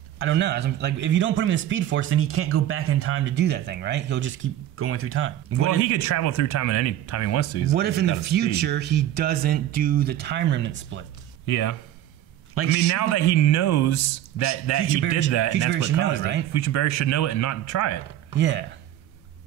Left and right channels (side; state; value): left; quieter; 12.3 dB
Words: I don't know. Like, if you don't put him in the Speed Force, then he can't go back in time to do that thing, right? He'll just keep going through time. Well, he could travel through time at any time he wants to. What if in the future he doesn't do the time remnant split? Yeah. Like, now that he knows that he did that, and that's what caused it, right? Future Barry should know it and not try it. Yeah.